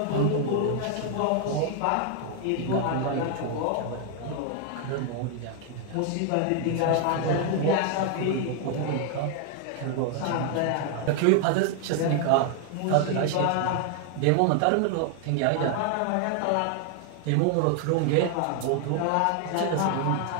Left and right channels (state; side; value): different; both; correlation 0.00